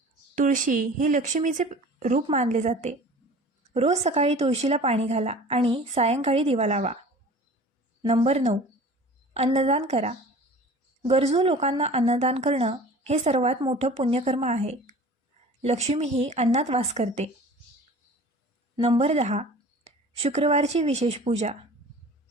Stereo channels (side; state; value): both; normal; correlation 0.43